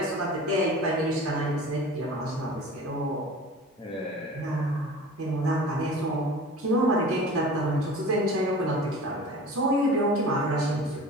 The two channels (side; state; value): both; normal; correlation 0.39